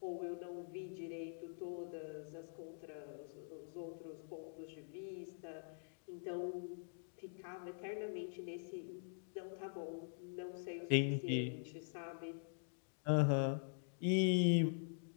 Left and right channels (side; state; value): right; silent; digital silence